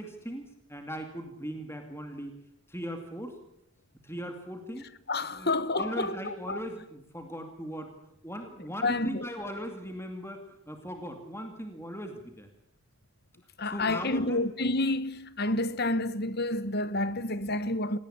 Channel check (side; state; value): both; normal; correlation 0.18